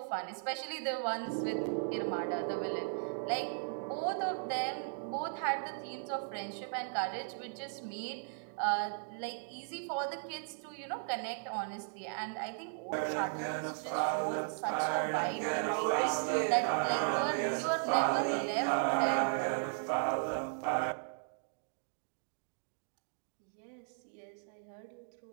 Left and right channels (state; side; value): silent; left; digital silence